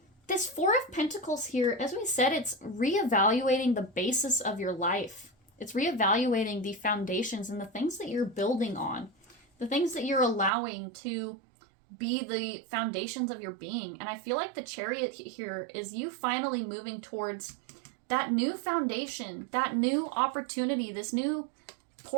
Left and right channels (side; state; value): left; drops out; at 10.5 s